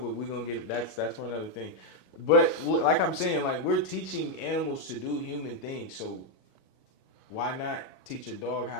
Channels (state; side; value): late; right; 37 ms